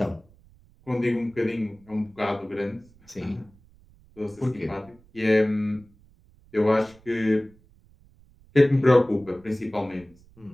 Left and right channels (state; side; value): noise; right; rumble, 28 dB below the sound